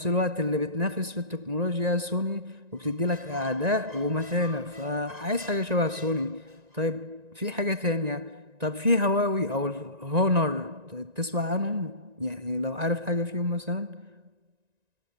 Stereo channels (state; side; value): late; left; 1.9 ms